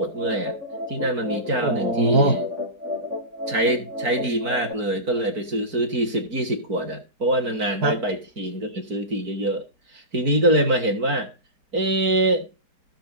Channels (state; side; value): late; left; 4.4 ms